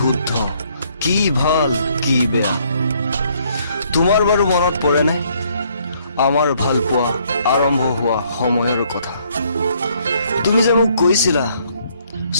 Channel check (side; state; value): both; inverted; correlation -0.67